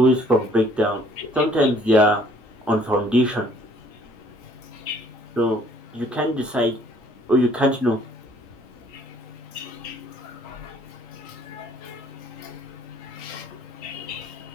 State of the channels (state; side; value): normal; both; correlation 0.60